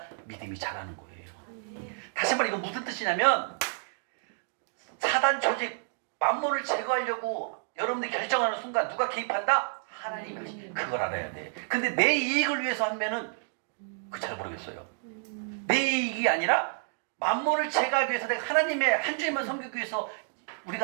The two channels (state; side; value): silent; left; digital silence